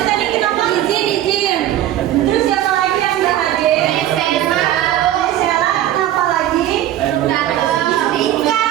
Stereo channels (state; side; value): quieter; left; 12.6 dB